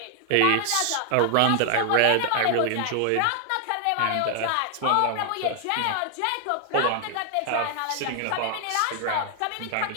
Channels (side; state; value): both; different; correlation 0.00